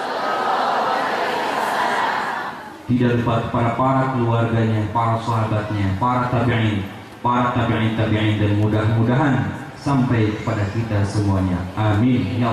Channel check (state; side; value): identical; both; correlation 1.00